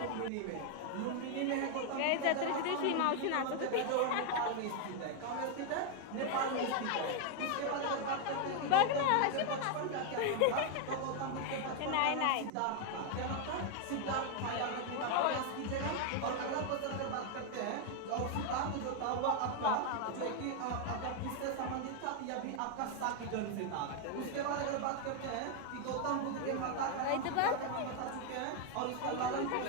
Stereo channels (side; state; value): both; different; correlation 0.00